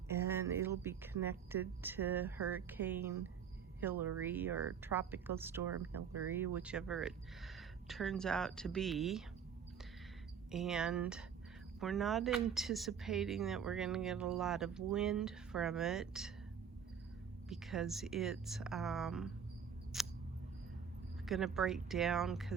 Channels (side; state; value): left; quieter; 7.4 dB